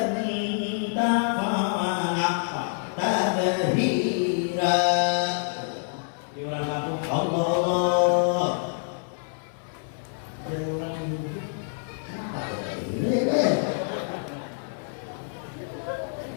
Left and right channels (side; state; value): right; silent; digital silence